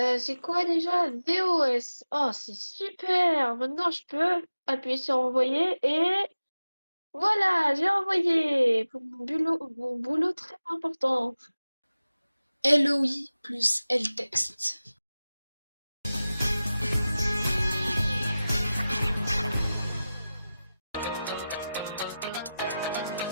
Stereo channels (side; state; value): both; inverted; correlation -0.96